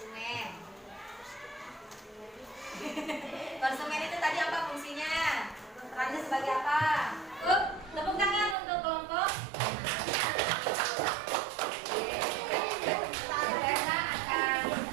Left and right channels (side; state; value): left; drops out; at 8.6 s